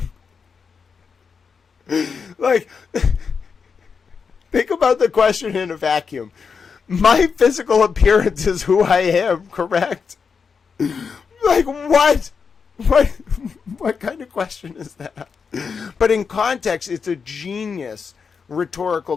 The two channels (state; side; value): quieter; right; 5.7 dB